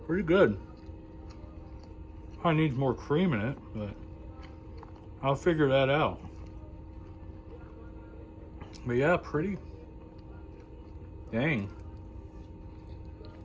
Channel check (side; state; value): both; identical; correlation 1.00